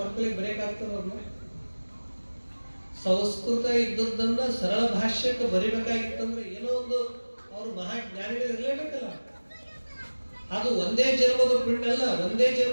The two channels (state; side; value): inverted; both; correlation -1.00